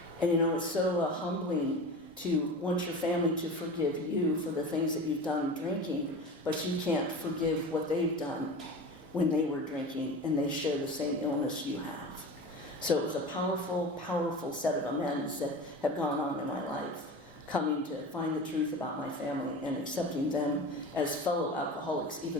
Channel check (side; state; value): both; normal; correlation 0.32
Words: And, it's so humbling to want your family to forgive you for the things that you've done drinking, but you can't forgive what they've done when they were drinking and they share the same illness you have. So it was a powerful, powerful set of amends that have gone on in my life, coming to find the truth about my family and accepting them as fellow alcoholics,